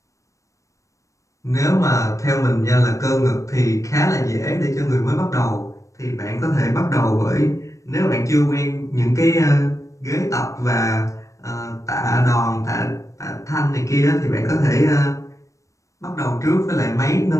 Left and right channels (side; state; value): right; late; 0.15 ms